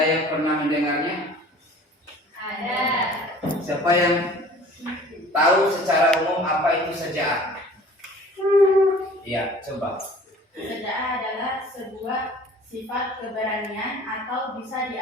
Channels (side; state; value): both; normal; correlation 0.47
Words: yang pernah mendengarnya? Ada. Siapa yang tahu secara umum apa itu sajaah? Iya, coba. Sajaah adalah sebuah sifat keberanian atau bisa